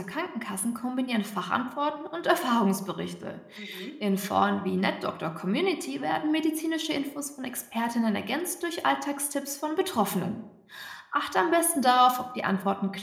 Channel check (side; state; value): both; identical; correlation 1.00